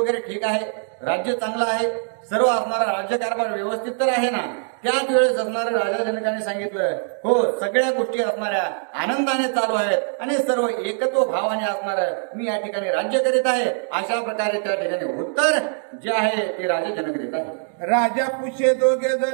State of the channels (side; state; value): left; silent; 64 dB below the other